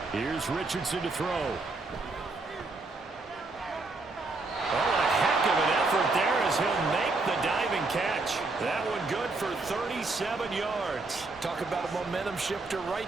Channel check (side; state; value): left; quieter; 3.5 dB